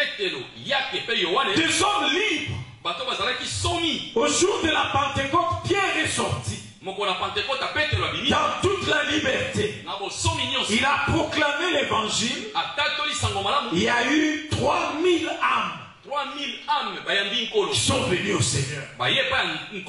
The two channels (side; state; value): both; identical; correlation 1.00